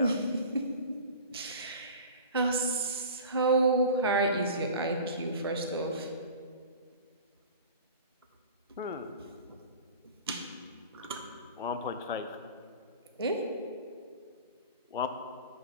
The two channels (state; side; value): inverted; both; correlation -0.39